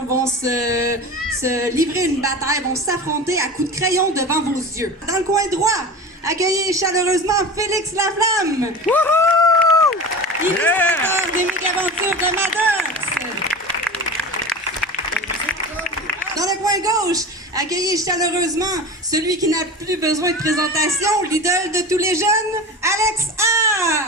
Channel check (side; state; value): both; normal; correlation 0.31